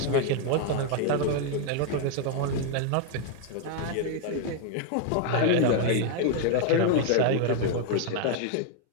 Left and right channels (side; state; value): both; different; correlation 0.00